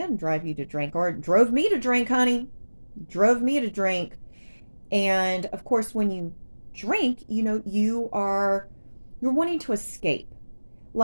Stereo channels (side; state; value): both; inverted; correlation -1.00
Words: drive you to drink, or drove me to drink, honey. Drove me to drink. And of course, when you drink, you're wanting to escape.